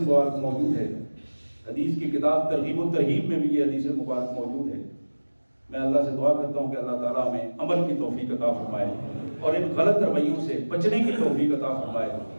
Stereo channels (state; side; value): inverted; both; correlation -1.00